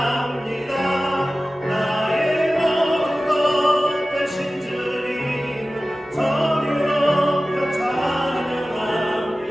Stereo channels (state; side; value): normal; both; correlation 0.96